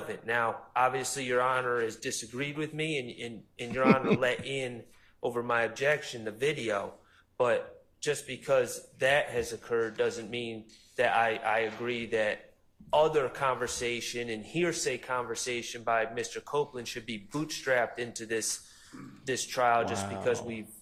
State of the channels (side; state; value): both; identical; correlation 1.00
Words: Now, obviously, Your Honor has disagreed with me, and Your Honor let in over my objection the video, but just because that has occurred doesn't mean that I agree that other conversation and hearsay conversation by Mr. Copeland should be bootstrapped into this trial just because we've